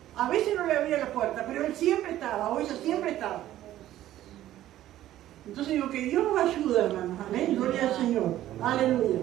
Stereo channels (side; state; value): left; quieter; 13.6 dB